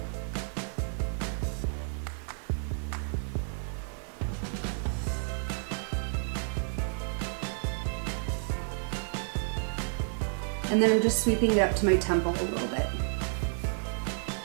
And then I'm just sweeping it up to my temple a little bit.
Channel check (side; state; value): left; silent; 57 dB below the other